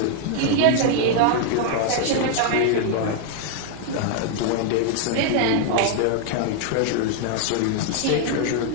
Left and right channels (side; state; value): both; different; correlation 0.00